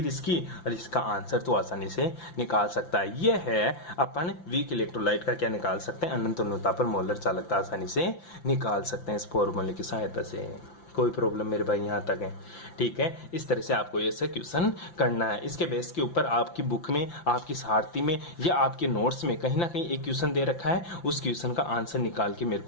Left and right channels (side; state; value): right; late; 5.9 ms